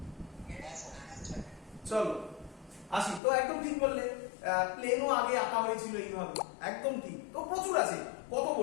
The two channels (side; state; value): right; drops out; at 3.2 s